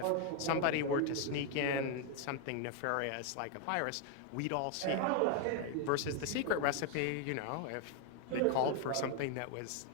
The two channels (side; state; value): both; different; correlation 0.00